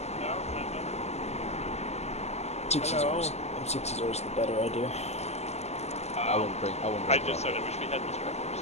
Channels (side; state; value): right; late; 0.32 ms